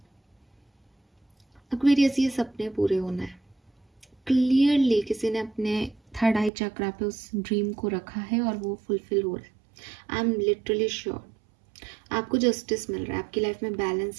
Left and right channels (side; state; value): left; drops out; at 6.5 s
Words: एक्वेरियस, ये सपने पूरे होना है। क्लियरली किसी ने अपने थर्ड आई चक्रा पे उस ड्रीम को रखा है और वो फुलफिल हो रहा है। आई एम लिटरली श्योर आपको जस्टिस मिल रहा है, आपकी लाइफ में